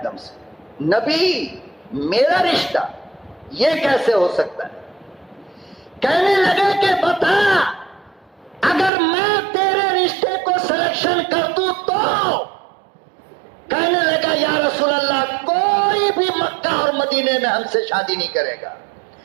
دم سے. نبی میرا رشتہ یہ کیسے ہو سکتا ہے؟ کہنے لگے کہ بتا اگر میں تیرے رشتے کو سلیکشن کر دوں تو؟ کہنے لگا یا رسول اللہ کوئی بھی مکہ اور مدینے میں ہم سے شادی نہیں کرے گا.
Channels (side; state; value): left; drops out; at 8.9 s